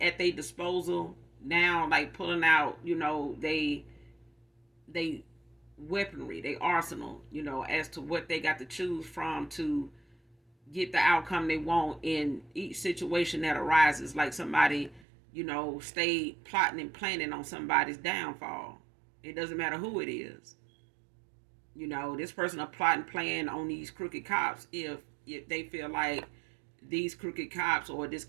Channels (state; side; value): drops out; left; at 15.0 s